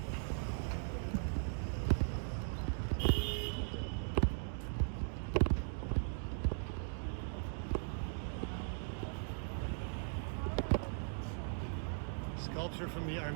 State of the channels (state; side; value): silent; left; digital silence